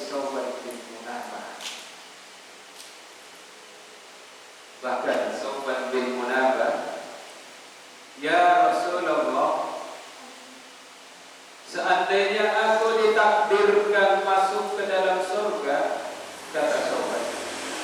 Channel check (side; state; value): both; identical; correlation 1.00